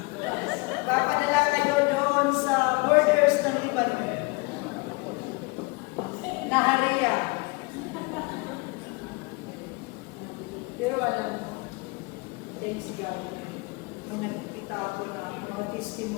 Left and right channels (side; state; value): right; quieter; 27.2 dB